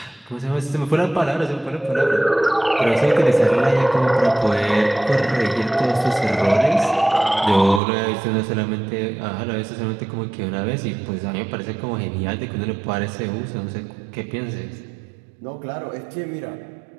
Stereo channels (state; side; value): drops out; left; at 7.8 s